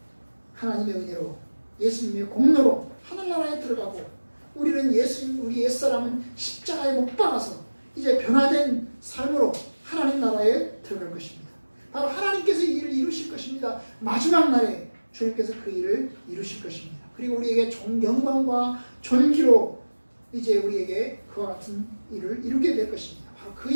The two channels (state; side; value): inverted; both; correlation -1.00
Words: 하나님의 은혜로 예수님의 공로로 하늘나라에 들어가고 우리 옛사람은 십자가에 못 박아서 이제 변화된 삶으로 하나님 나라에 들어갈 것입니다. 바로 하나님께서 이 일을 이루실 것입니다. 마지막 날에 주님께서 그 일을 이루실 것입니다. 그리고 우리에게 영광과 존귀로 이제 우리에게 그와 같은 일을 이루게 될 것입니다. 바로 그